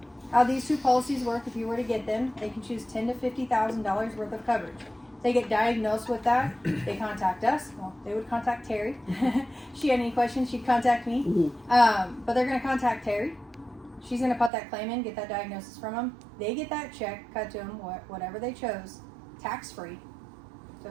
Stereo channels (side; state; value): left; drops out; at 14.5 s